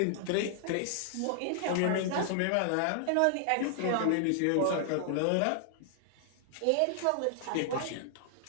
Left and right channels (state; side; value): different; both; correlation 0.00